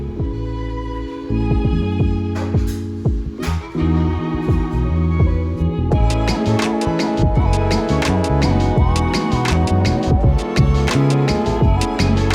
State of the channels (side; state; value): both; identical; correlation 1.00